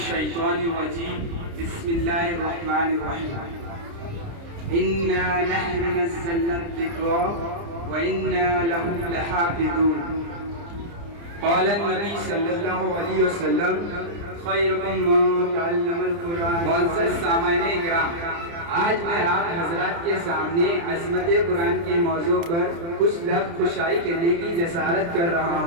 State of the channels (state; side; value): late; left; 29 ms